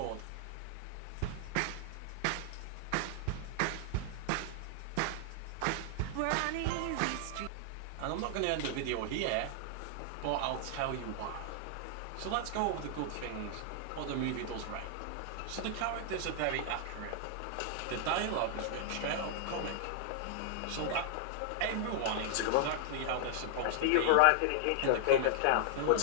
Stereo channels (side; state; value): both; different; correlation 0.00